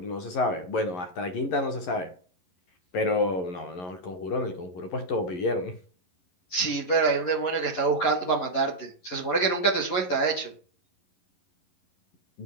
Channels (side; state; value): right; late; 11 ms